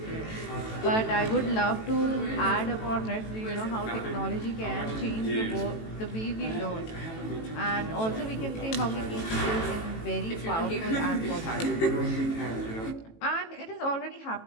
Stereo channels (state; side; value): late; right; 18 ms